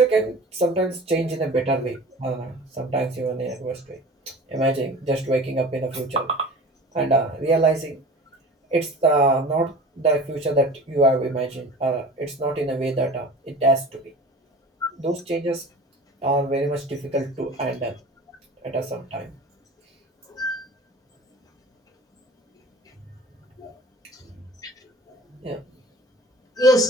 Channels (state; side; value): normal; both; correlation 0.40